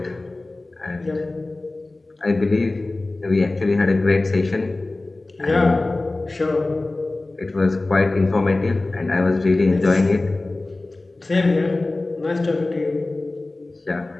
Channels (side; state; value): right; quieter; 3.0 dB